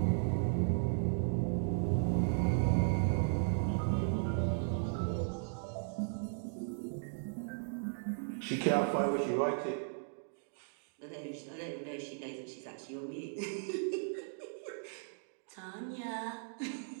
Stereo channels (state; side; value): silent; left; digital silence